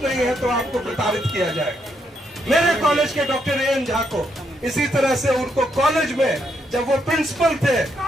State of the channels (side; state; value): both; normal; correlation 0.77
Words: नहीं है तो आपको प्रताड़ित किया जाएगा। मेरे कॉलेज के डॉक्टर एएन झा को इसी तरह से उनको कॉलेज में जब वो प्रिंसिपल थे